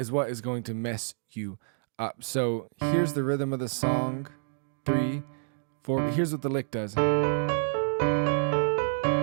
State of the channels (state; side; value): silent; left; digital silence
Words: what is going to mess you up. So here's the rhythm of the song. 3, 4. Here's what the lick does.